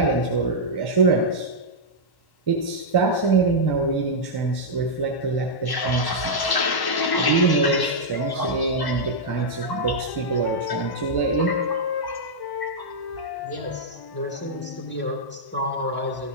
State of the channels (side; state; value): right; late; 1.1 ms